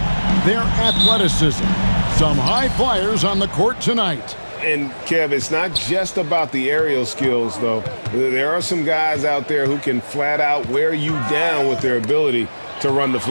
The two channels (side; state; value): both; inverted; correlation -1.00